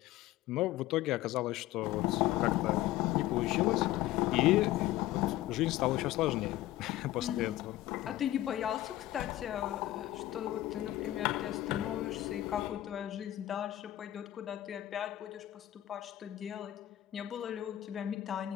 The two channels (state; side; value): quieter; right; 14.9 dB